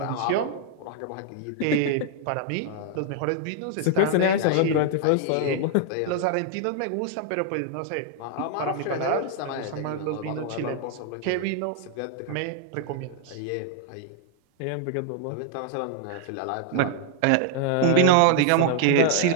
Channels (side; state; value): both; different; correlation 0.00